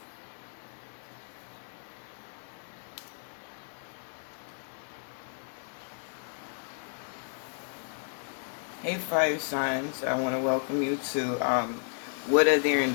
Hey fire signs, I want to welcome you to what are their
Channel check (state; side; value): silent; right; digital silence